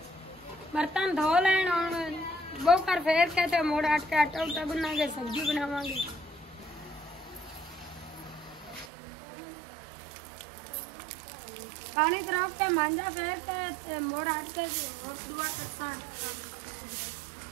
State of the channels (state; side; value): drops out; left; at 8.9 s